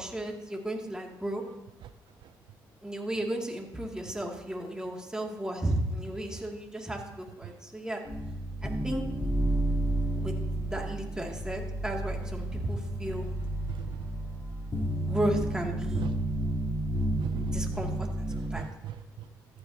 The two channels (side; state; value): both; normal; correlation 0.80